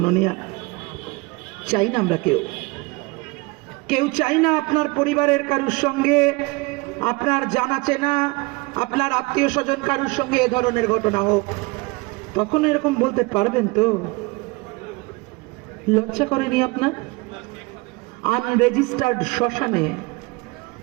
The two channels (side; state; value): left; quieter; 25.5 dB